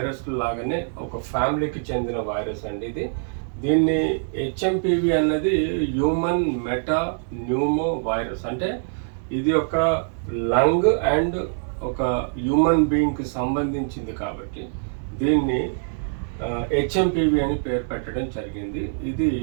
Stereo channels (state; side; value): silent; left; digital silence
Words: లాగానే ఒక ఫ్యామిలీకి చెందిన వైరస్ అండి. దీన్ని హెచ్ఎంపీవీ అన్నది హ్యూమన్ మెటా న్యూమో వైరస్. అంటే ఇది ఒక లంగ్ అండ్ ఒక హ్యూమన్ బీయింగ్కి సంబంధించింది కాబట్టి దీన్ని హెచ్ఎంపీవీ అని పేరు పెట్టడం జరిగింది. ఇది